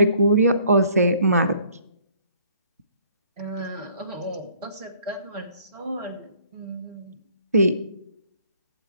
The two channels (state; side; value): inverted; both; correlation -0.59